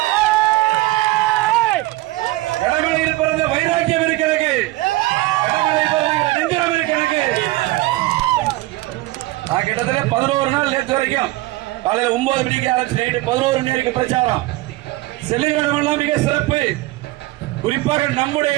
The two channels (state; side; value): quieter; left; 19.0 dB